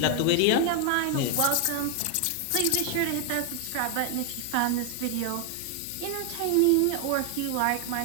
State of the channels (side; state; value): both; different; correlation 0.00